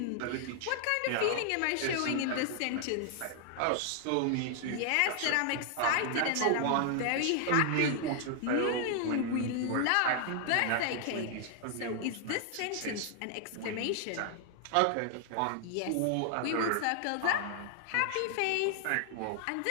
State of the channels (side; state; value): both; different; correlation 0.00